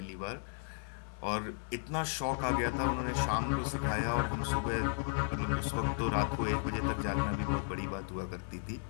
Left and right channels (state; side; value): silent; right; 55 dB below the other